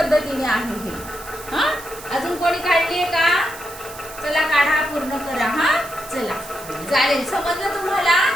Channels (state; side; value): noise; right; hiss, 15 dB below the sound